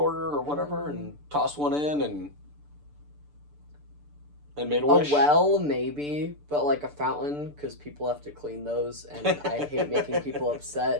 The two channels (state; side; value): late; left; 6.8 ms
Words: or whatever, and tossed one in and made a wish. A well, maybe, but like a fountain, because people have to clean those, and I hate making people